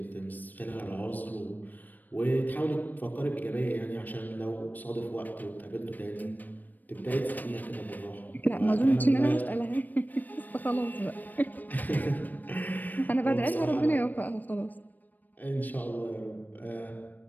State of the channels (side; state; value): right; late; 0.086 ms